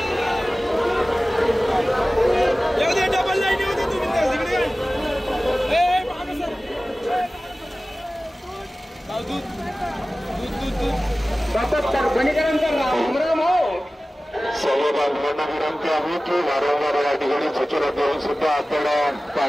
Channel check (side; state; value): both; normal; correlation 0.96